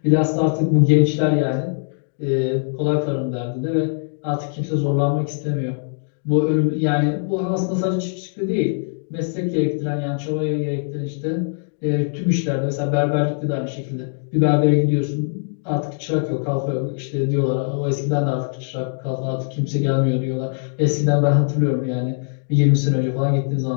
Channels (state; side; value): silent; right; digital silence